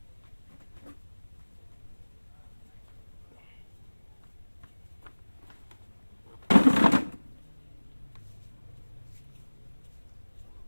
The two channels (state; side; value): inverted; both; correlation -1.00